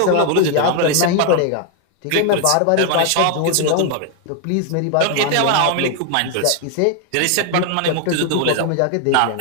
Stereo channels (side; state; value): both; different; correlation 0.00